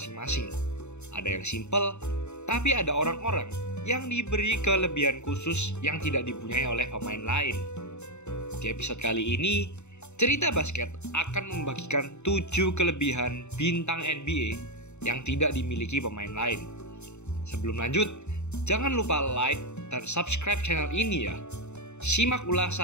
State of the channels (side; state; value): right; late; 0.82 ms